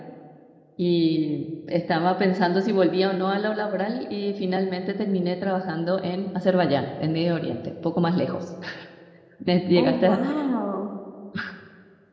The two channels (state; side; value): identical; both; correlation 1.00